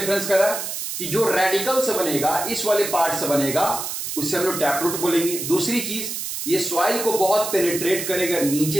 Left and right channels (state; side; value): noise; right; hiss, 5 dB below the sound